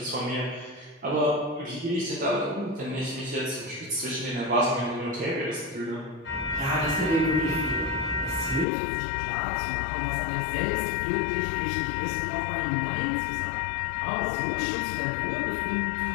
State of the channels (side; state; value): right; drops out; at 8.7 s